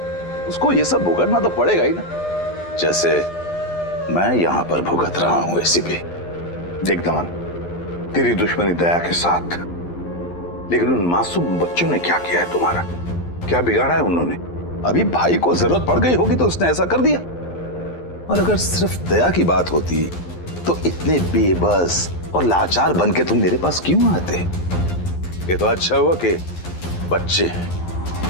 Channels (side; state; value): right; late; 11 ms